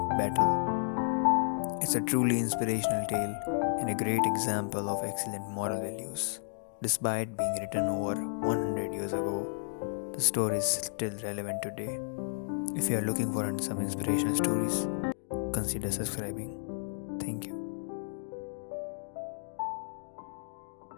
battle. It's a truly inspirational tale and a great example of excellent moral values. Despite being written over 100 years ago, the story is still relevant today. If you are looking for some inspirational stories, consider subscribing. Thank you.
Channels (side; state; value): right; silent; digital silence